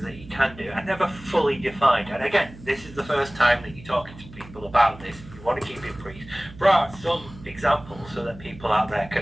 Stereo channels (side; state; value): right; noise; hum, 18 dB below the sound